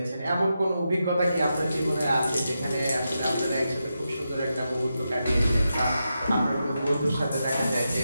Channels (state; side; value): inverted; both; correlation -0.87